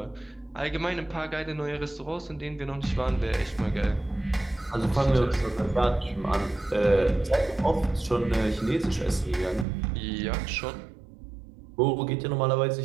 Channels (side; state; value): left; drops out; at 9.7 s